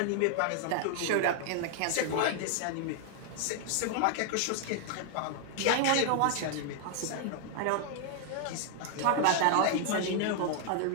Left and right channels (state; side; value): different; both; correlation 0.00